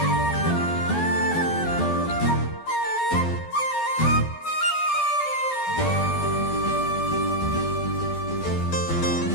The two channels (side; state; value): right; late; 12 ms